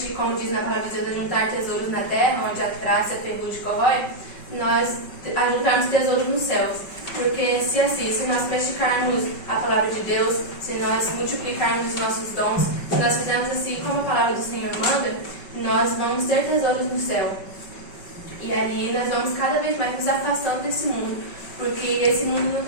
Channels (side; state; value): right; late; 5.3 ms